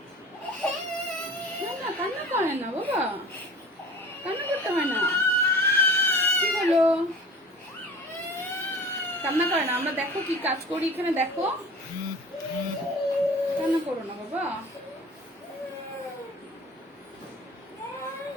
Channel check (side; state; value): both; normal; correlation 0.41